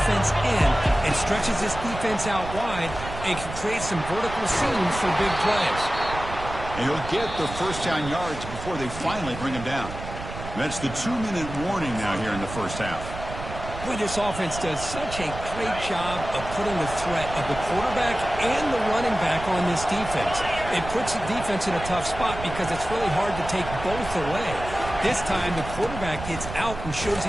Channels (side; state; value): right; noise; rumble, 10 dB below the sound